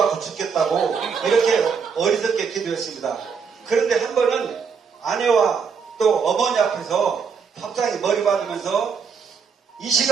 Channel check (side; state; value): left; quieter; 6.0 dB